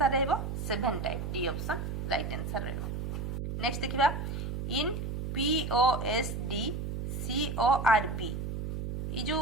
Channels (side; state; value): right; noise; hum, 4 dB below the sound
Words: रहबो 7 type D option right answer रहबो नेक्स्ट देखिबा इन POSD CORB ई जो